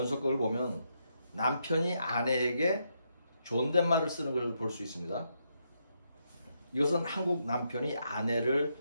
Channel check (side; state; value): both; inverted; correlation -0.79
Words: 보면 남편이 아내에게 존댓말을 쓰는 걸 볼 수 있습니다. 이것은 한국 남편이